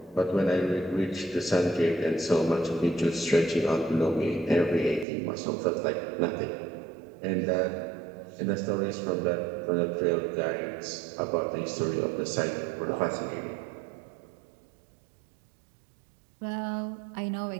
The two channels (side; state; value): left; drops out; at 5.1 s